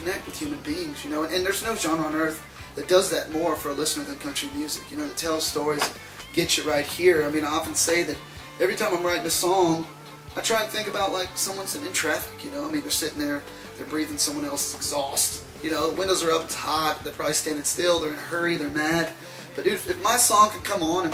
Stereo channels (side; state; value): both; identical; correlation 1.00